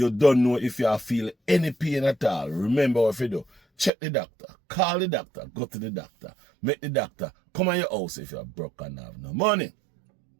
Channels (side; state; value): left; drops out; at 3.9 s